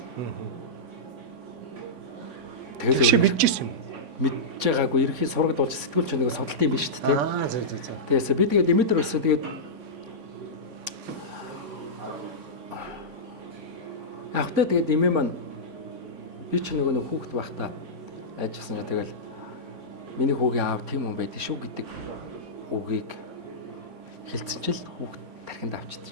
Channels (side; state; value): left; late; 3.5 ms